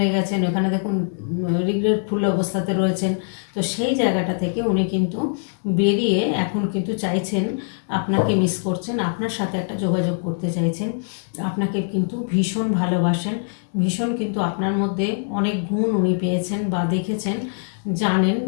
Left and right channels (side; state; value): right; silent; 64 dB below the other